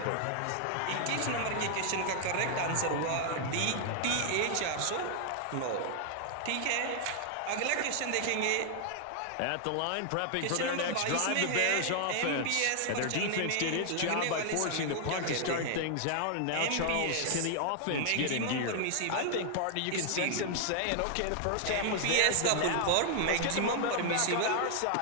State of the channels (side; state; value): both; different; correlation 0.00